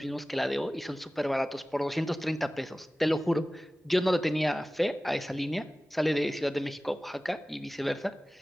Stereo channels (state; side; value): normal; both; correlation 0.97